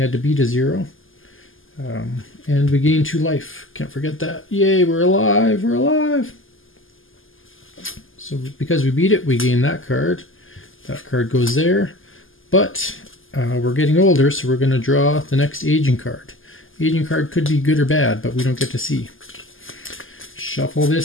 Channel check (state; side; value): late; right; 0.59 ms